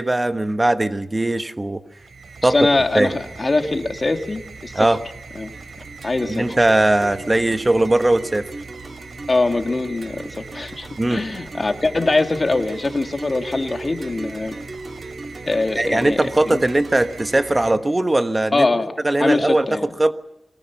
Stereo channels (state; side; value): normal; both; correlation 0.97